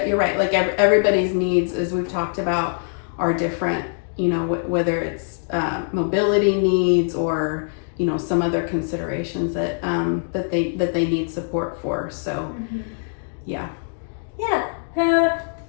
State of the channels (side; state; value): right; silent; digital silence